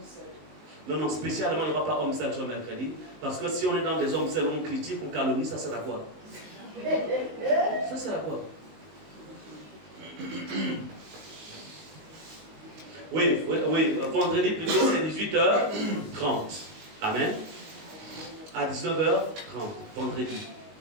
Non, spécialement, il n'y aura pas homme seul sur mercredi. Parce que si on est dans des hommes seuls, on critique, on calomnie, ça sert à quoi? Ça sert à quoi? Oui, vendredi plutôt, c'est 18h30. Amen. À 19h30, vendredi.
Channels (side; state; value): left; late; 19 ms